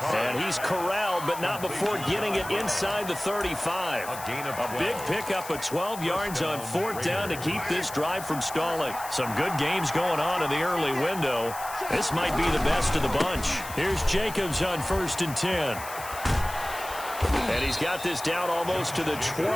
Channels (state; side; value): noise; left; hiss, 13 dB below the sound